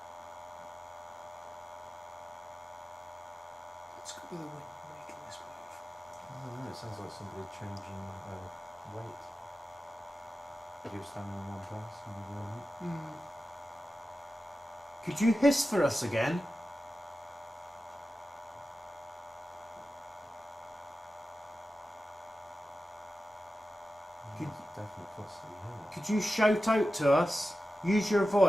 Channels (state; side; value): normal; both; correlation 0.93